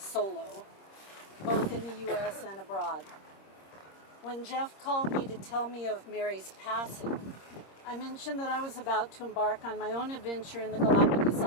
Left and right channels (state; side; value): late; right; 26 ms